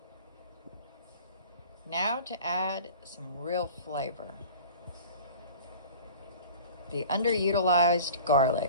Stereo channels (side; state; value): both; inverted; correlation -0.42